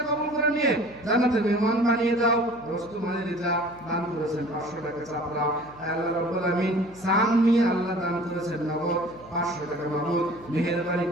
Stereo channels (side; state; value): left; noise; hum, 22 dB below the sound